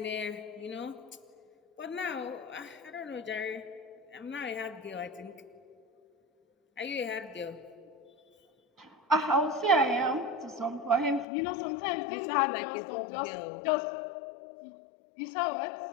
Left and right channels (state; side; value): drops out; right; at 11.2 s